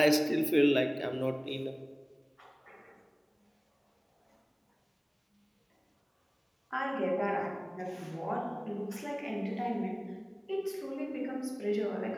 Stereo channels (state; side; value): identical; both; correlation 1.00